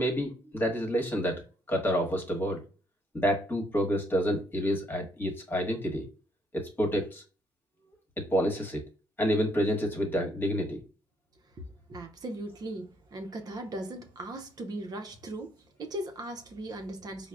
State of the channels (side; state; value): both; normal; correlation 0.70